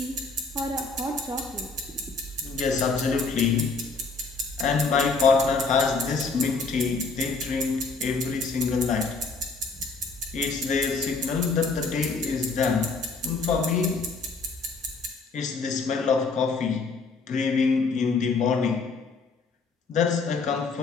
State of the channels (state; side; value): quieter; right; 4.2 dB